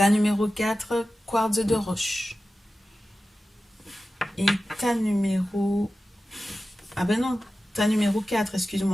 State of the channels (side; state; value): both; normal; correlation 0.94